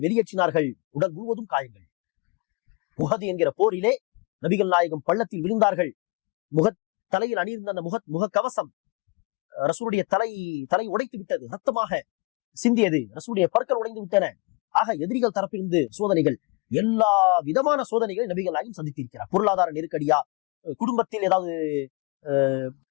வெளியேற்றினார்கள். உடல் முழுவதும் காயங்கள். உஹது என்கிற போரிலே நபிகள் நாயகம் பள்ளத்தில் விழுந்தார்கள். தலையில் அணியிருந்த அந்த முக கவசம் ரசூலுடைய தலை உடைத்து விட்டது. ரத்தமாக சிந்தியது. ரசூலுடைய பற்கள் உடைந்து விட்டன. ஆக எதிரிகள் தரப்பிலிருந்து சோதனைகள், எல்லா விதமான சோதனைகளை நபிகள் நாயகம் சந்தித்திருக்கிறார். பொருளாதார நெருக்கடியா, குடும்பத்தில் ஏதாவது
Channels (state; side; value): quieter; right; 29.4 dB